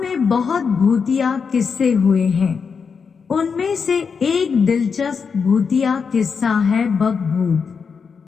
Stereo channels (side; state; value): right; quieter; 5.8 dB